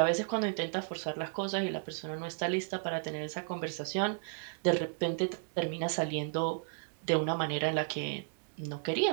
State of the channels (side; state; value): left; silent; 55 dB below the other